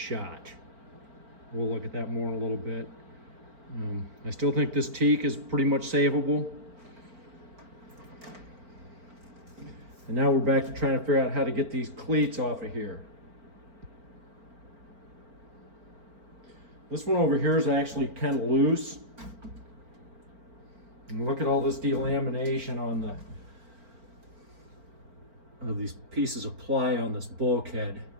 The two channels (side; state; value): left; late; 4.4 ms